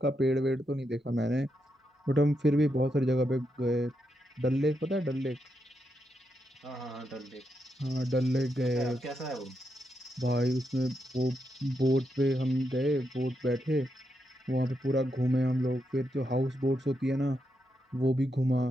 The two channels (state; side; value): normal; both; correlation 0.83